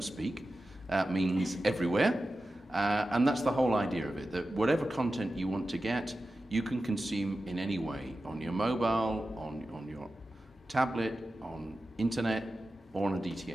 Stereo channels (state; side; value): normal; both; correlation 0.93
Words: speak, means everywhere. And that's the whole idea of it, that whatever content you want to get, you can consume in any way, on your mobile, on your tablet, on internet, or on a